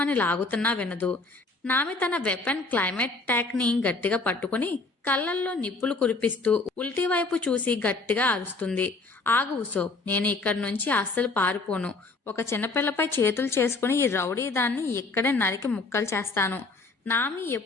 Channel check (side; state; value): right; quieter; 3.6 dB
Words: లాగుతున్నా వినదు. నామి తన వెపన్ క్లైమేట్ ట్యాక్ ని గట్టిగా పట్టుకుని కళ్ళల్లో నిప్పులు కురిపిస్తూ ఉల్టీ వైపు చూసి గట్టిగా అరుస్తుంది. ఆగు ఉసోప్, నేను ఇక్కడి నుంచి అస్సలు పారిపోను. ఒక చిన్నపిల్లపై చేతులు చేసుకుని ఈ రౌడీ దాన్ని ఇక్కడే నరికి ముక్కలు చేస్తాను. నామి